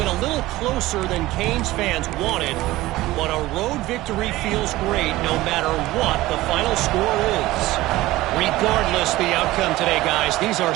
a little closer than Canes fans wanted, but a road victory feels great no matter what the final score is. Regardless the outcome today, guys, these are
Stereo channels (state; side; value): quieter; left; 17.7 dB